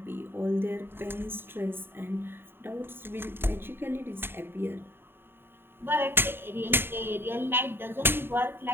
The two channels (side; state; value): left; late; 0.11 ms